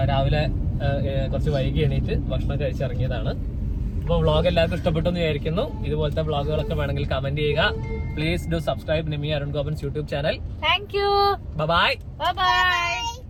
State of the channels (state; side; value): identical; both; correlation 1.00